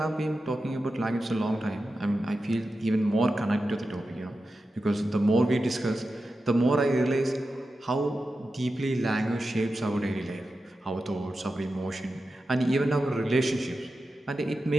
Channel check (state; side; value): normal; both; correlation 0.91